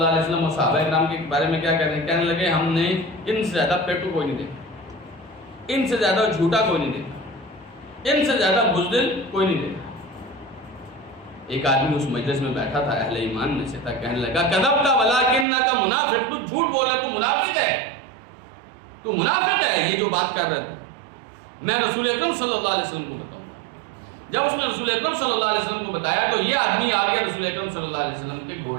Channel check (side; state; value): left; drops out; at 15.5 s